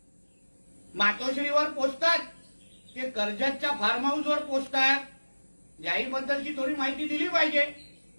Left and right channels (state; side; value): inverted; both; correlation -1.00